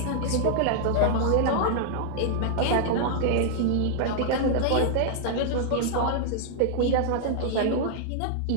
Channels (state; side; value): different; both; correlation 0.00